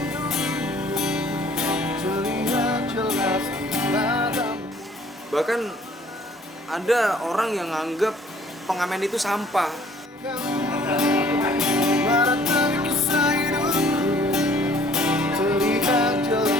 Bahkan ada orang yang nganggap pengamen itu sampah.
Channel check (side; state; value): both; normal; correlation 0.57